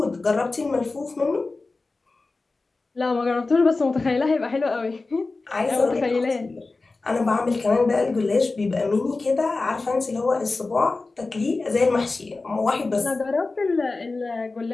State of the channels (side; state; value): right; quieter; 3.6 dB